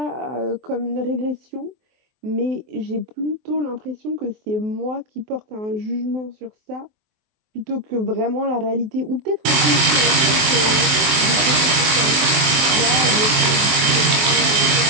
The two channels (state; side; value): late; left; 23 ms